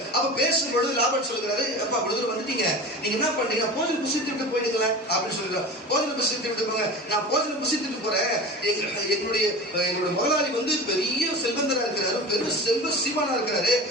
அப்ப பேசும்பொழுது லாபான் சொல்லுகிறாரு, அப்பா இவ்வளவு வந்துட்டீங்க, நீங்க என்ன பண்றீங்க, போஜனம் புசித்துட்டு போயிடுங்களா அப்படின்னு சொல்லுறாரு. போஜனம் புசித்து விட்டு போங்க. நான் போஜனம் புசித்துட்டு போறேன், எங்களுடைய முதலாளி வந்து பெரிய செல்வந்தரா இருக்கிறாரு, பெரிய செல்வ சீமானா இருக்கிறாரு,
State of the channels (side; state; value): both; normal; correlation 0.33